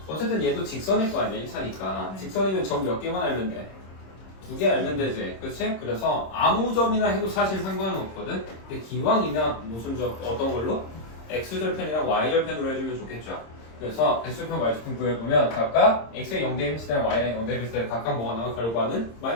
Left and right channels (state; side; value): late; right; 26 ms